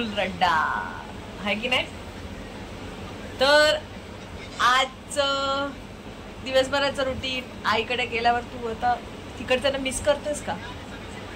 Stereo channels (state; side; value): identical; both; correlation 1.00